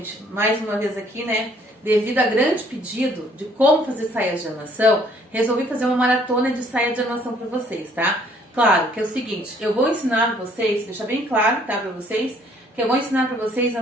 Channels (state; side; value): normal; both; correlation 0.62